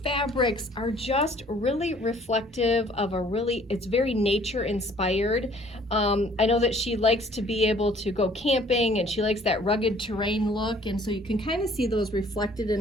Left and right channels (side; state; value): both; normal; correlation 0.57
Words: fabrics are just really reflective of it's very nature inspired. I know that she likes to be able to go camping, and she likes that rugged terrain look, and so you can kind of see those reflected